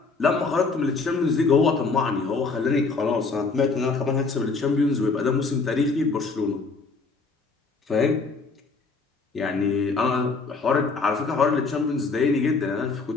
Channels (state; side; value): quieter; right; 4.2 dB